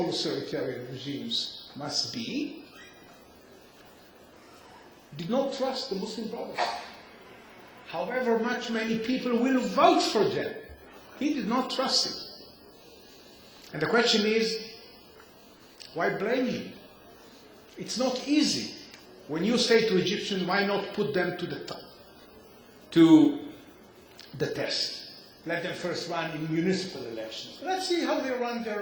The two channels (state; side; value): identical; both; correlation 1.00